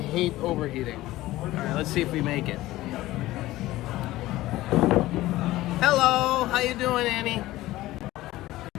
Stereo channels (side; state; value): right; quieter; 16.9 dB